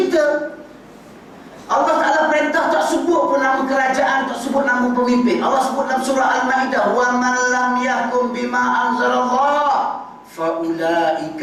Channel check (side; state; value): both; identical; correlation 1.00